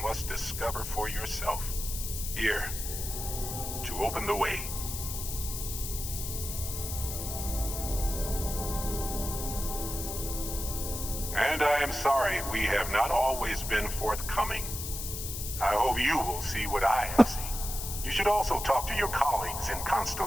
must discover for yourself. Here, to open the way. And I am sorry we have not always been forthcoming. I hope you will see what I have seen. You should also talk to your colleagues in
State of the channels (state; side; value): noise; left; hiss, 6 dB below the sound